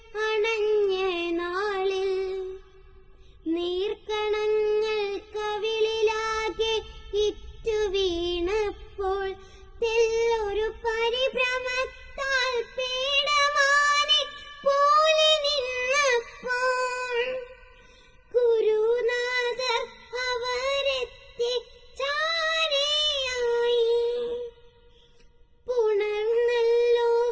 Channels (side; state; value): both; identical; correlation 1.00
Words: അണഞ്ഞ നാളിൽ നീർക്കണങ്ങൾ കവിളിലാകെ ഇറ്റു വീണപ്പോൾ, തെല്ലൊരു പരിഭ്രമത്താൽ പീഡമാനി പോലെ നിന്നപ്പോൾ, ഗുരുനാഥർ അവരെത്തി ചാരയായി. പുണർന്നല്ലോ